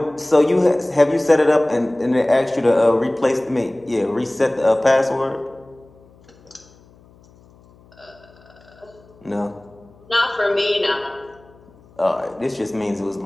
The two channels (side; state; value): left; noise; hum, 27 dB below the sound